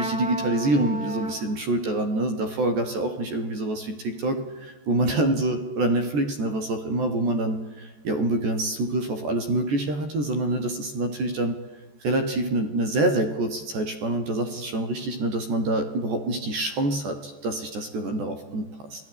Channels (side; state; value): left; late; 14 ms